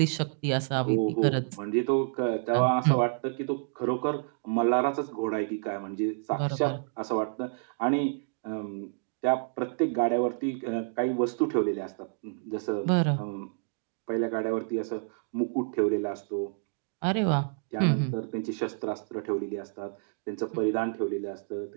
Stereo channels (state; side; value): silent; left; digital silence